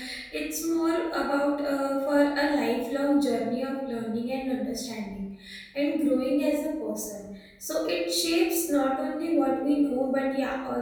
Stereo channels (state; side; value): identical; both; correlation 1.00